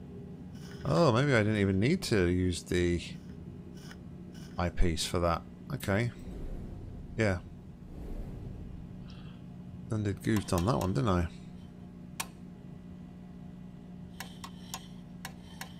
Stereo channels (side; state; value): both; identical; correlation 1.00